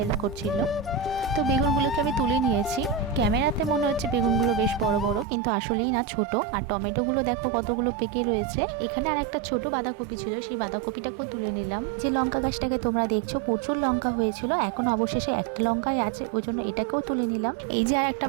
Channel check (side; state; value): left; drops out; at 5.2 s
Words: করছিল। তো বেগুনগুলোকে আমি তুলে নিয়েছি। ক্যামেরাতে মনে হচ্ছে বেগুনগুলো বেশ বড় বড়, কিন্তু আসলেই না, ছোট। আর টমেটোগুলো দেখো কতগুলো পেকে রয়েছে। এখানে আর একটা ছোট বাঁধাকপি ছিল, সেই বাঁধাকপিটাকেও তুলে নিলাম। যে লঙ্কা গাছটাকে তোমরা দেখছো প্রচুর লঙ্কা হয়েছিল, এখন অবশেষে একটা লঙ্কাই আছে, ওই জন্য এটাকেও তুলে নিলাম। এই যে আর একটা